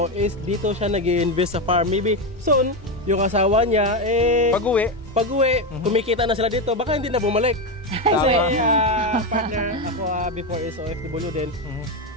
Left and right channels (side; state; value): both; normal; correlation 0.11